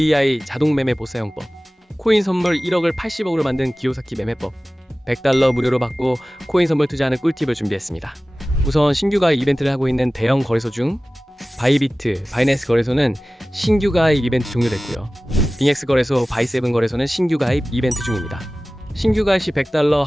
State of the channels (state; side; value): normal; both; correlation 0.97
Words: 자동 매매 보사용법, 코인 선물 1억을 80억으로 만든 기요사키 매매법, 100달러 무료로 받고 코인 선물 투자하는 꿀팁을 준비했습니다. 우선 신규 가입 이벤트를 하고 있는 대형 거래소 중 바이비트, 바이낸스 거래소는 신규 가입 이벤트 종료됐고요. 빙엑스 거래소, 바이세븐 거래소는 신규 가입 이벤트 중입니다. 신규 가입 시 100달러